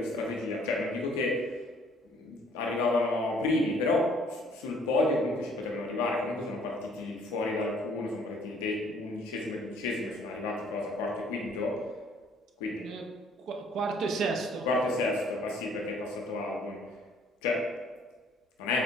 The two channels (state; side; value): normal; both; correlation 0.60